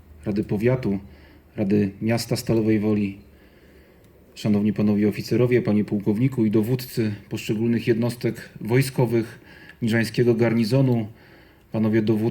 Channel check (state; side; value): identical; both; correlation 1.00